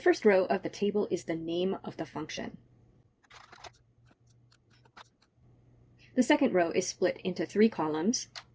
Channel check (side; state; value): both; identical; correlation 1.00